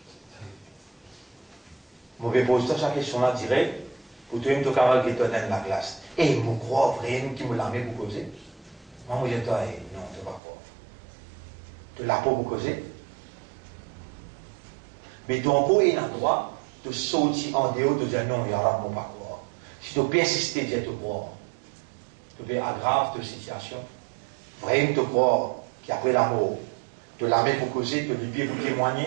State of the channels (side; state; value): left; drops out; at 10.4 s